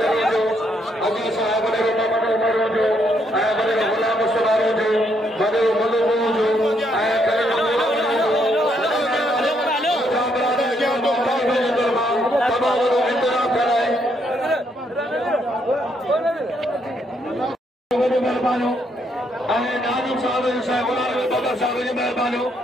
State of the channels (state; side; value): normal; both; correlation 0.74